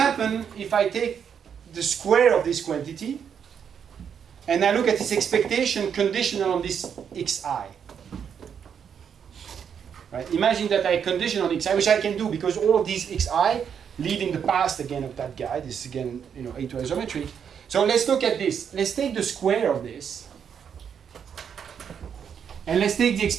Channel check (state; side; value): quieter; left; 7.7 dB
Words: if I take the square of this quantity and I look at its expectation conditional on this xi. Right? Imagine that I condition on xi, which I can do because all of these xi live in the past again of that guy. This is again, A to isometry. So let's look at this. Let's take the square of this, and let's take the